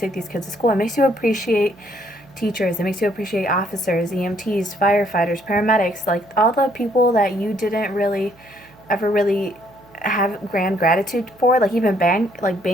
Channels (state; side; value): noise; right; hum, 28 dB below the sound